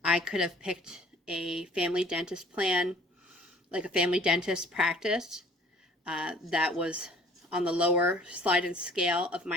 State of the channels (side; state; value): both; normal; correlation 0.52